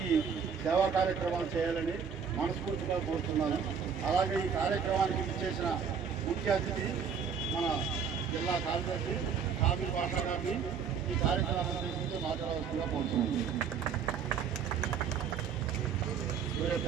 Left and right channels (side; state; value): left; quieter; 6.8 dB